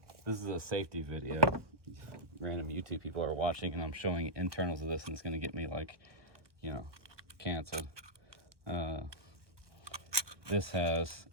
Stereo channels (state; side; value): late; left; 1.0 ms